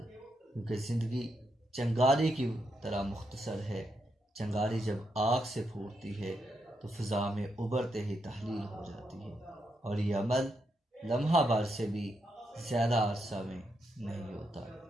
کیونکہ زندگی چنگاری کی طرح مختصر ہے۔ چنگاری جب آگ سے پھوٹتی ہے تو فضا میں ابھرتے ہی تحلیل ہو جاتی ہے، اور یہ عمل لمحہ بھر سے بھی زیادہ عرصہ میں نہیں ہوتا۔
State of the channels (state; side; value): normal; both; correlation 0.82